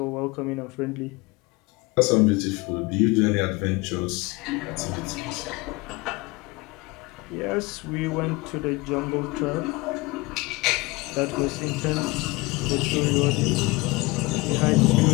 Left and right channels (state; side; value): quieter; right; 23.5 dB